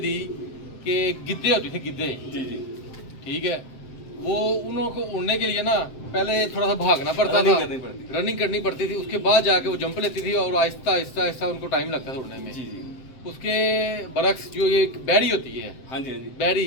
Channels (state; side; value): late; right; 7.7 ms